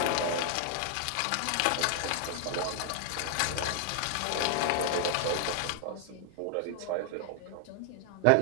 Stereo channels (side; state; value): both; different; correlation 0.00